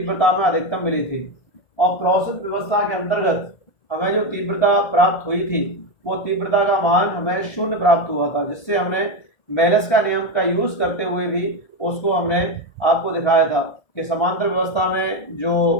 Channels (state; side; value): late; right; 1.3 ms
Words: में अधिकतम मिली थी, और क्रॉस व्यवस्था के अंतर्गत हमें जो तीव्रता प्राप्त हुई थी वो तीव्रता का मान हमें 0 प्राप्त हुआ था, जिससे हमने मेलस का नियम का यूज करते हुए भी उसको हमने आपको दिखाया था कि समांतर व्यवस्था में जो